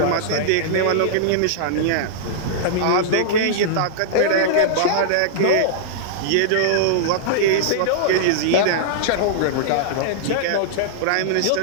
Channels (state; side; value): different; both; correlation -0.02